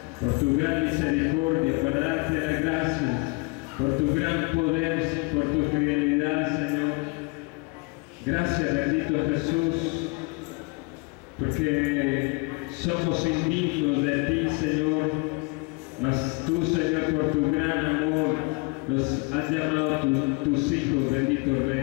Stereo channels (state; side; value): quieter; right; 28.3 dB